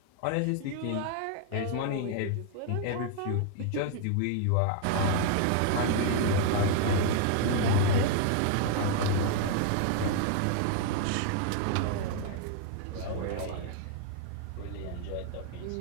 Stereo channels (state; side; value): different; both; correlation 0.00